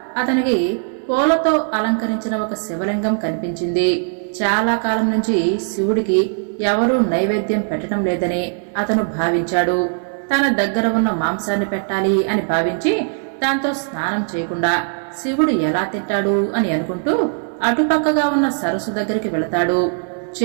అతనికి పూలతో అలంకరించిన ఒక శివలింగం కనిపించింది. చాలా కాలం నుంచి శివుడికి ఎవరూ నైవేద్యం పెట్టడం లేదని అతను భావించాడు. తన దగ్గర ఉన్న మాంసాన్ని పెట్టాలి అని భావించి దాంతో స్నానం చేయకుండా శివుడు ఎలా తింటాడు అని అనుకుంటూ అటుపక్కగా ఉన్న సరస్సు దగ్గరికి వెళతాడు.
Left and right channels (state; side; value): silent; left; 66 dB below the other